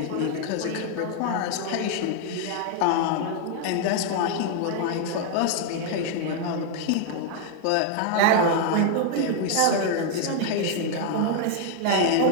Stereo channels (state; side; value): different; both; correlation 0.00